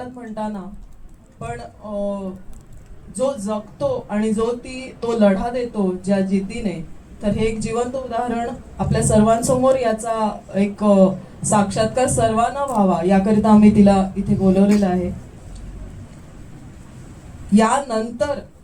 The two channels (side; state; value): both; identical; correlation 1.00